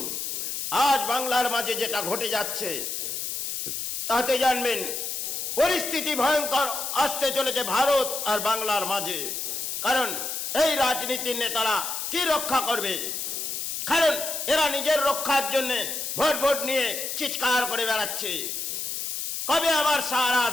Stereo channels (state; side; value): noise; left; hiss, 4 dB below the sound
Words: আজ বাংলার মাঝে যেটা ঘটে যাচ্ছে, তাতে জানবেন পরিস্থিতি ভয়ঙ্কর আসতে চলেছে ভারত আর বাংলার মাঝে। কারণ এই রাজনীতির নেতারা কি রক্ষা করবে, কারণ এরা নিজের রক্ষার জন্য ভোট নিয়ে চিৎকার করে বেড়াচ্ছে, কবে আমার সাহারা